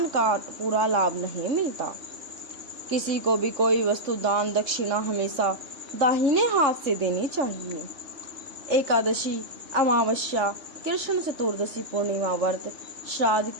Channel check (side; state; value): left; late; 3.3 ms